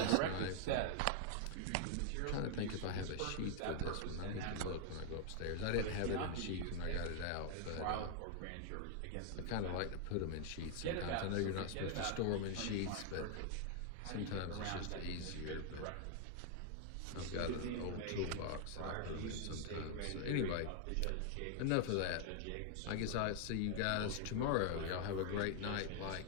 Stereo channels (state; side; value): different; both; correlation 0.00